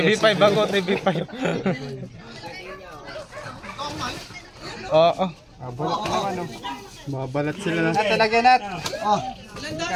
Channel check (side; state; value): both; identical; correlation 1.00